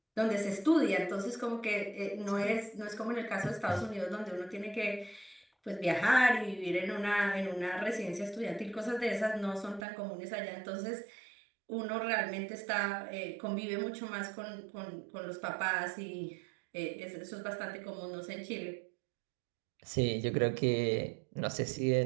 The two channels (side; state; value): left; drops out; at 9.9 s